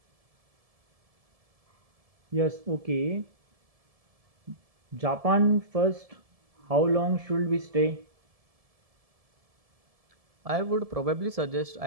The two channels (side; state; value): left; late; 1.7 ms